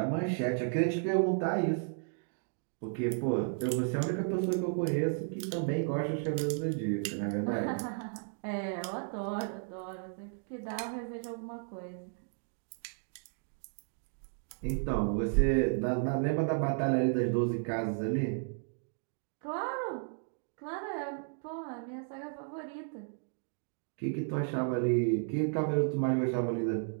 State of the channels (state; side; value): silent; left; 55 dB below the other